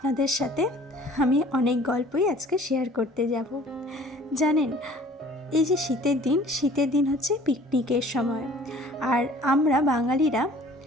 সাথে আমি অনেক গল্পই আজকে শেয়ার করতে যাব। জানেন, এই যে শীতের দিন হচ্ছে পিকনিকের সময়, আর আমরা বাঙালিরা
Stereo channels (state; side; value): normal; both; correlation 0.51